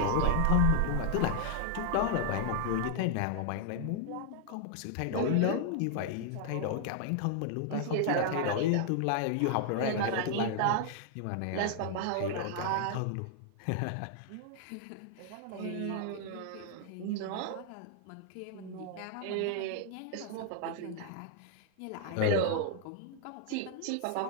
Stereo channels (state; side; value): different; both; correlation 0.00